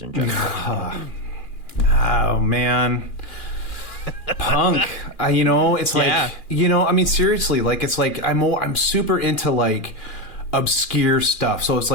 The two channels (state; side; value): late; right; 2.4 ms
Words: in general? Oh man. Punk, it's like, I mean, seriously, like, it's like I'm super into like obscure stuff. So it's